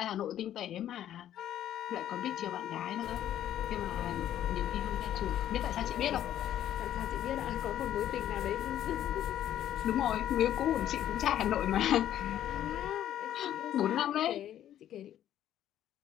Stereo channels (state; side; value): quieter; right; 11.5 dB